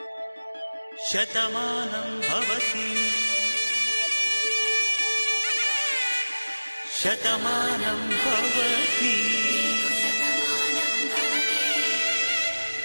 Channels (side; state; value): both; inverted; correlation -1.00